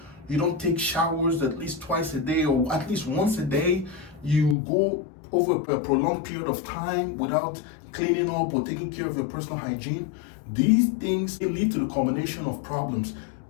you don't take showers at least twice a day or at least once a day, you go over a prolonged period of time without cleaning up or taking care of your personal hygiene, these things lead to the combination of problems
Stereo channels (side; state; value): right; drops out; at 4.5 s